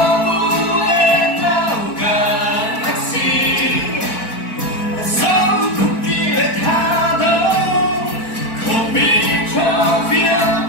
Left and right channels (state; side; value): late; right; 4.5 ms